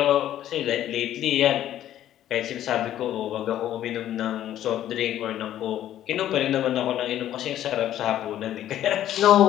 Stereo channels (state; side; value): quieter; right; 12.0 dB